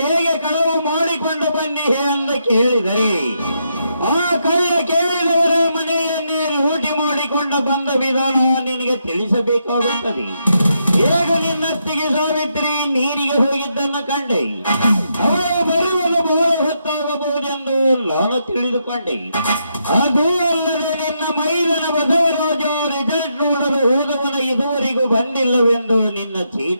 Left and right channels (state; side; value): inverted; both; correlation -0.80